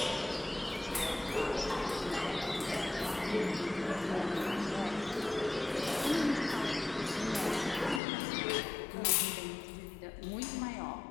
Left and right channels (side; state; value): right; drops out; at 8.0 s